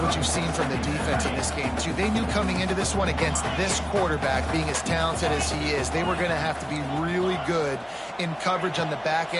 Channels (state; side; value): identical; both; correlation 1.00